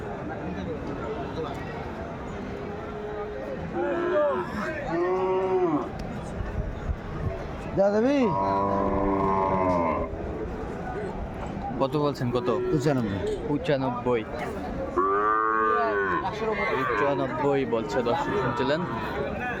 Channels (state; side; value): identical; both; correlation 1.00